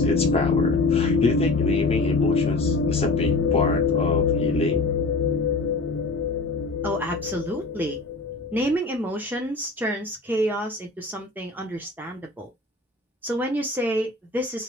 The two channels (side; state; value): right; quieter; 3.2 dB